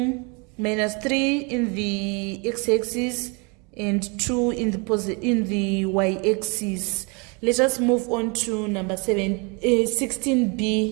minus 3 in the x-axis and 2 in the y-axis. Let us move on to number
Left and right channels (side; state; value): left; quieter; 31.7 dB